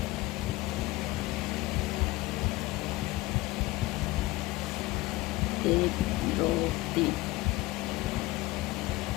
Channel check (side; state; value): right; quieter; 20.0 dB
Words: एक, दो, तीन।